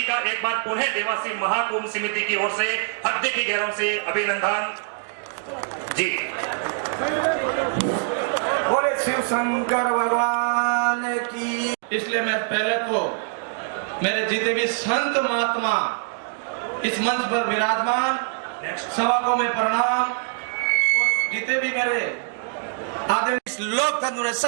का एक बार पुनः देवासी महाकुंभ समिति की ओर से हृदय की गहराइयों से अभिनंदन जी। बोले शिव शंकर भगवान की। इसलिए मैं पहले तो मेरे जितने भी संत महात्मा इस मंच पर विराजमान सभा को मैं प्रणाम, और जितने भी मेरे आदरणीय इस लोकतंत्र में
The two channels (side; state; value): left; silent; 62 dB below the other